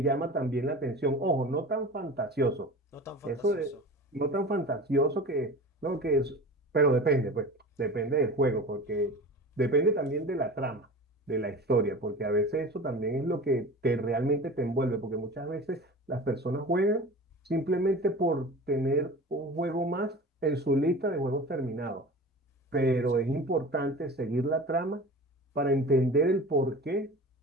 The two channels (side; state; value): both; normal; correlation 0.35